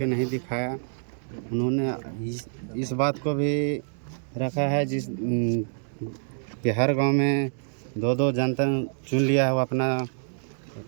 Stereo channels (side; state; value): left; silent; digital silence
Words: नहीं दिखाया। उन्होंने इस बात को भी रखा है कि हर गांव में दो जनता चुन लिया है, वो अपना